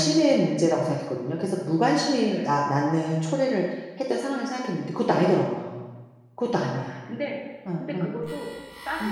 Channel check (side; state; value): both; identical; correlation 1.00